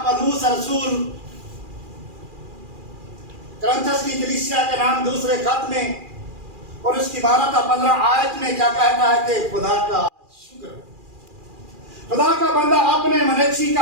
पौलुस रसूल कुरिन्थियों की कलीसिया के नाम दूसरे खत में और उसकी 12 था 15 आयत में क्या कहता है कि खुदा का शुक्र। खुदा का बंदा अपने मनची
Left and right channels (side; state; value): left; late; 2.4 ms